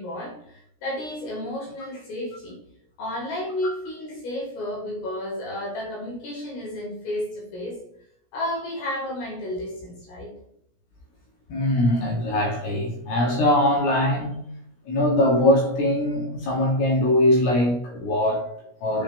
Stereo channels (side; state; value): right; late; 17 ms